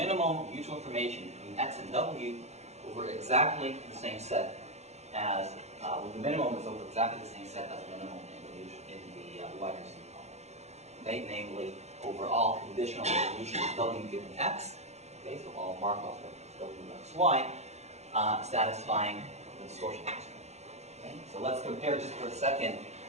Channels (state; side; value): late; left; 0.32 ms